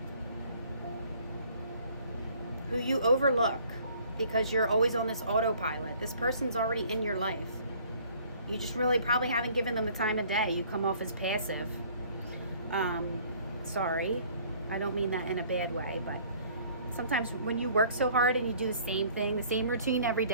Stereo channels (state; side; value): inverted; both; correlation -0.56